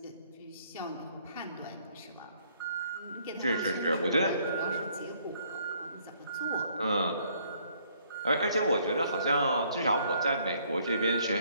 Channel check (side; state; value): both; inverted; correlation -0.65